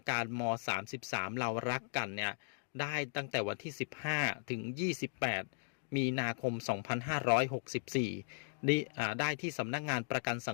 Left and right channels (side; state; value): right; silent; digital silence